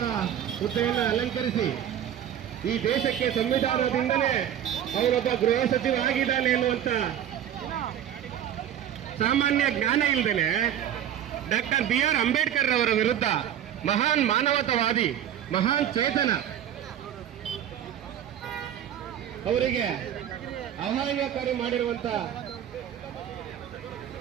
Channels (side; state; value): left; quieter; 10.3 dB